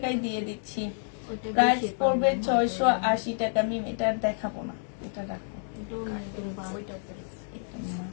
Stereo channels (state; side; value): silent; right; digital silence